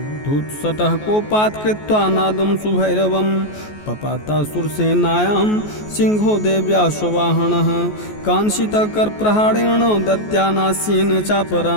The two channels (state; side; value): late; right; 14 ms